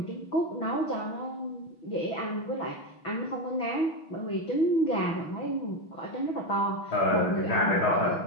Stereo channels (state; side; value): late; right; 6.2 ms